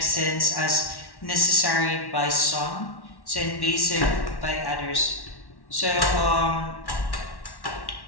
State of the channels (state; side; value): late; right; 1.1 ms